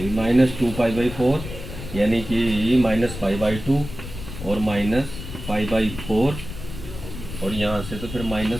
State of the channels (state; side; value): noise; left; rumble, 10 dB below the sound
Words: माइनस 2π/4, यानी कि माइनस π/2 और माइनस π/4, और यहाँ से तो फिर